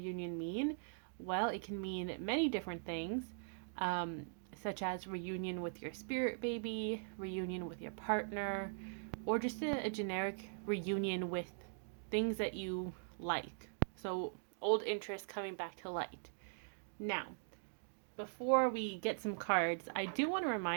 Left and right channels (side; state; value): left; silent; digital silence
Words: mean? Well, it can mean many different things, um, such as reunion with your spirit baby, reunion with your partner, or just a generic reunion with things that you like. So, old interests coming back to light. Now, before we get some cards, I do want to